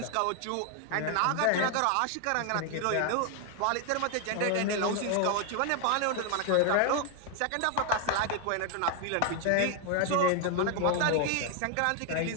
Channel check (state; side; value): different; both; correlation 0.01